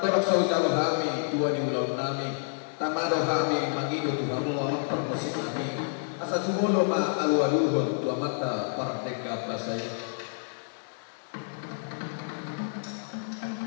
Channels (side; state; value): right; silent; digital silence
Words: saudara kami tua di ulon nami tamado kami mangido tuhamu amat permusim nami asa sumulo ma alualuhon tua mata parteka basay.